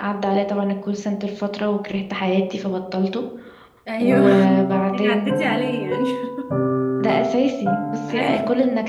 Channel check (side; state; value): both; identical; correlation 1.00